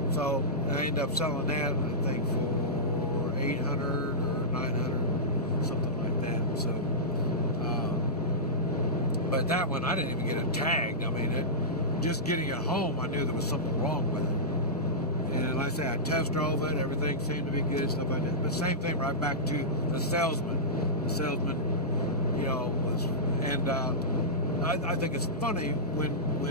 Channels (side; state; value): both; normal; correlation -0.13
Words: so I ended up selling that, I think, for $800 or $900, something like that. So, but that one, I didn't even get it tagged. I mean, just getting it home, I knew there was something wrong with it. And like I say, I test drove it, everything seemed to be good, stuff like that. But same thing, right back to the salesman. The salesman, you know, was, and I think it's funny when